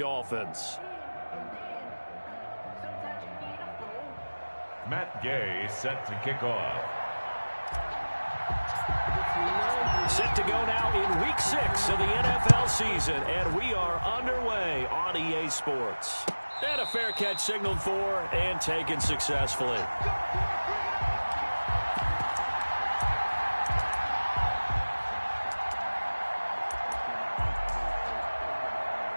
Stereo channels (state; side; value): inverted; both; correlation -1.00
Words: Matt Gay set to kick off. Set to go now in Week 6 of the NFL season, and we are underway on EA Sports. And a fair catch signaled for and taken successfully.